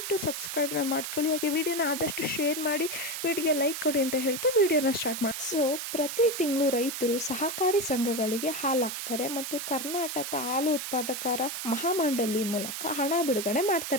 ಸಬ್ಸ್ಕ್ರೈಬ್ನ ಮಾಡ್ಕೊಳ್ಳಿ. ಹಾಗೆ ವಿಡಿಯೋನ ಆದಷ್ಟು ಶೇರ್ ಮಾಡಿ, ವಿಡಿಯೋಗೆ ಲೈಕ್ ಕೊಡಿ ಅಂತ ಹೇಳ್ತಾ ವಿಡಿಯೋನ ಸ್ಟಾರ್ಟ್ ಮಾಡಿ. ಸೊ ಪ್ರತಿ ತಿಂಗಳು ರೈತರು ಸಹಕಾರಿ ಸಂಘಗಳಿಗೆ ಹಾಲು ಹಾಕ್ತಾರೆ ಮತ್ತು ಕರ್ನಾಟಕ ಹಾಲು ಉತ್ಪಾದಕರ ಮಹಾಮಂಡಳಿ ಮೂಲಕ ಹಣ ಬಿಡುಗಡೆ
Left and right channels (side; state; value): right; noise; hiss, 5 dB below the sound